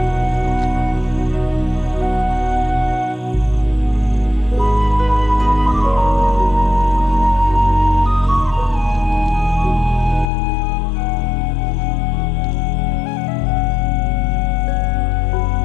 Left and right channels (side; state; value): right; drops out; at 10.3 s